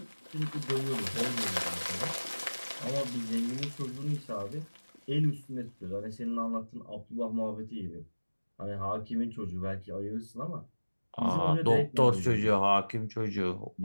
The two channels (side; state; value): both; inverted; correlation -1.00